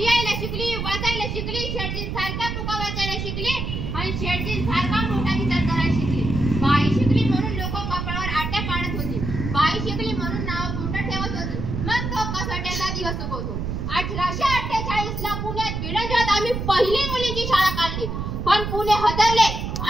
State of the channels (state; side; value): noise; right; rumble, 3 dB below the sound